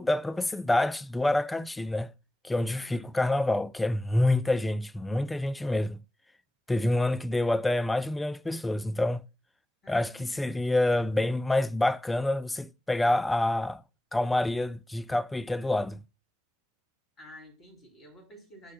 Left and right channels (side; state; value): both; normal; correlation 0.97